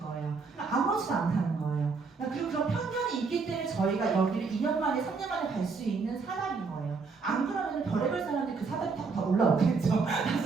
거예요. 그러니까 아무렇지도 않다는 거예요. 그리고 그런 편견이 있기 때문에 저희가 여기를 2년 만에 3년 만에 갈 수 있는 사람인 거예요. 안 그러면 별의별 사람들이 그 사다리 타고 다 올라오겠죠.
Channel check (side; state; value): left; quieter; 4.7 dB